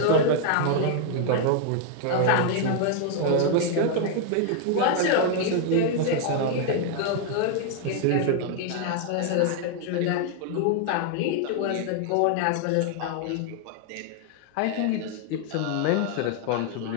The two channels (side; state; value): both; different; correlation 0.00